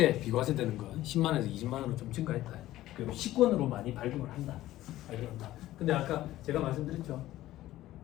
비과세 되는 건 10만 원에서 20만 원으로 좀 증가했다. 그리고 식권으로 많이 발급을 한다. 근데 아까 제가 말씀드렸죠.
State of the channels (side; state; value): right; quieter; 15.1 dB